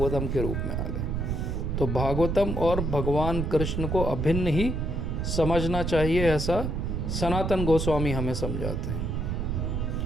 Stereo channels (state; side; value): noise; right; rumble, 1 dB below the sound